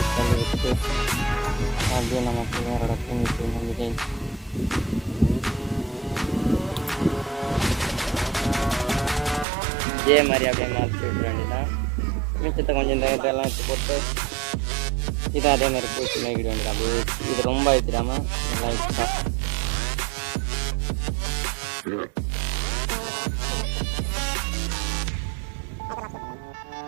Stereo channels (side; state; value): left; drops out; at 9.5 s